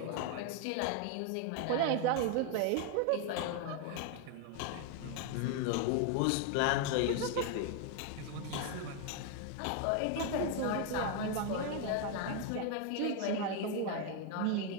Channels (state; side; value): different; both; correlation 0.01